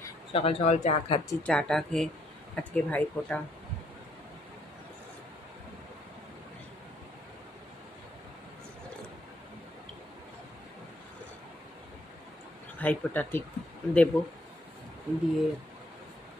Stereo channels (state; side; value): normal; both; correlation 0.69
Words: সকাল সকাল চা খাচ্ছি। চাটা খেয়ে আজকে ভাইফোঁটা। ভাইফোঁটা ঠিক দেব, দিয়ে